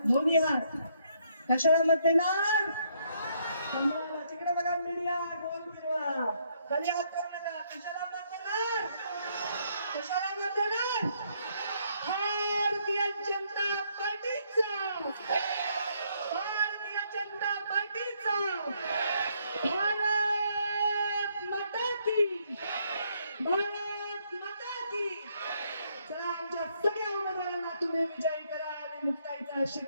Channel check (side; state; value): both; inverted; correlation -0.71